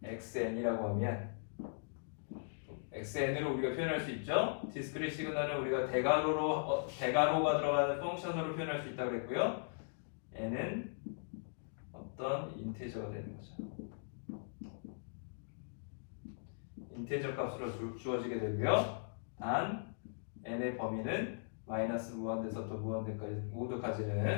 xn이라고 하면 xn으로 우리가 표현할 수 있죠. 디스크릿 시그널은 우리가 대괄호가 들어가는 펑션으로 표현할 수 있다고 그랬고요. n은 어떤 인티저가 되는 거죠. 인티저 값으로 주어지게 되고요. 단 n의 범위는 마이너스 무한대에서부터 무한대까지 모두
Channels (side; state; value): right; silent; digital silence